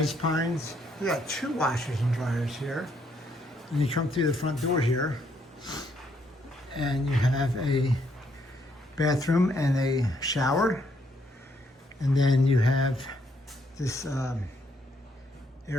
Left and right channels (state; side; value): normal; both; correlation 0.72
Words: Pines. We got 2 washers and dryers here. And you come through the front door here and you have a bathroom and a shower. And then you have this